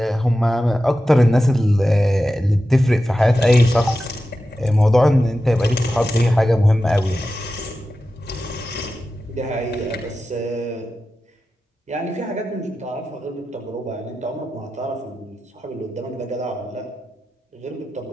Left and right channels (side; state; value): both; normal; correlation 0.92